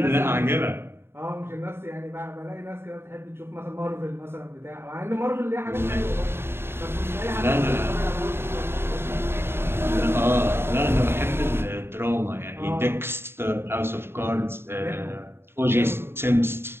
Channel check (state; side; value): late; left; 0.11 ms